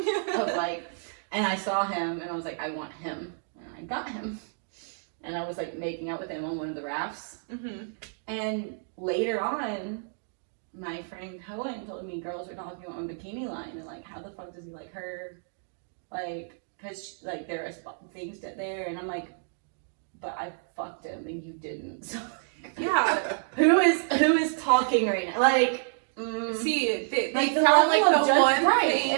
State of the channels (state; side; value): silent; left; digital silence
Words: of like, and I saw him and I was like, I want him, and I got him, and I was like making out with him on one of the rafts, Mm-hmm. and later on, my friend Cohen told me girls are talking about my bikini line and like, how the fuck does he like her, like, cause like there are things there, and I'm like, but I fucked him and you didn't, so. Yeah. Who is talking right now? Like, See, they like the found level like of the one right, thing